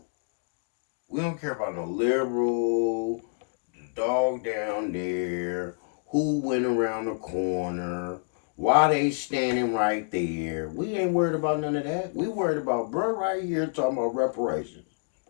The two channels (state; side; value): silent; right; digital silence